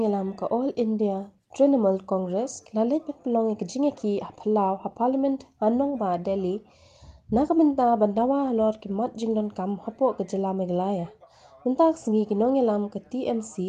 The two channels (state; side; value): identical; both; correlation 1.00